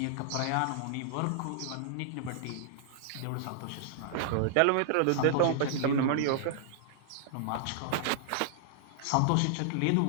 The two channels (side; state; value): both; different; correlation -0.01